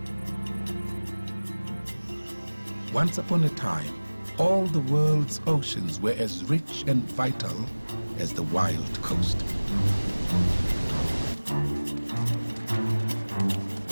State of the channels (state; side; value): inverted; both; correlation -1.00